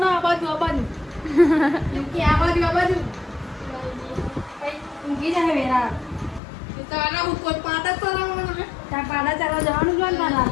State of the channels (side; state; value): right; drops out; at 6.4 s